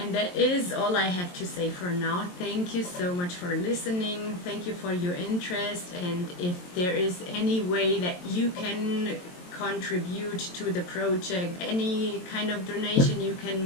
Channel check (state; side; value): late; right; 22 ms